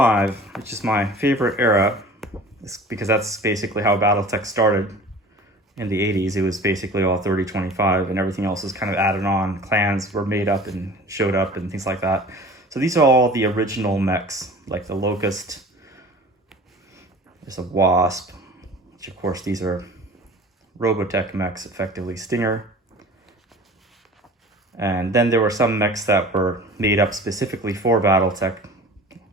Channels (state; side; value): normal; both; correlation 0.42